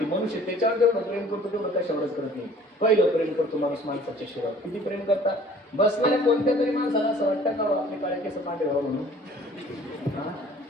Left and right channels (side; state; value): both; normal; correlation 0.52